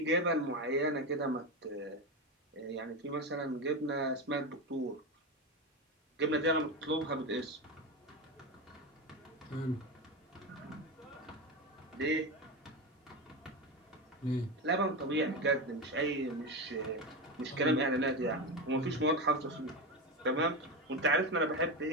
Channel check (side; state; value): both; normal; correlation 0.17